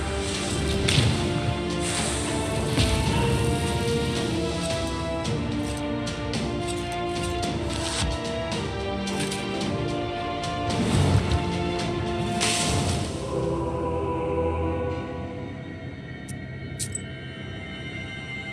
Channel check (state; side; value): identical; both; correlation 1.00